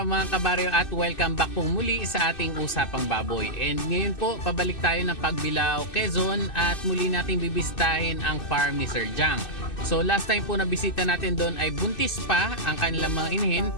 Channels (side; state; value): right; late; 2.6 ms